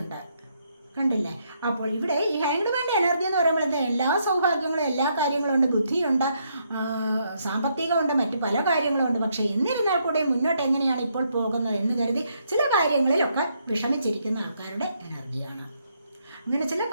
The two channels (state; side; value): inverted; both; correlation -0.75